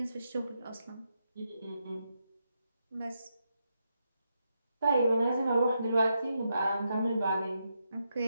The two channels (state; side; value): inverted; both; correlation -0.83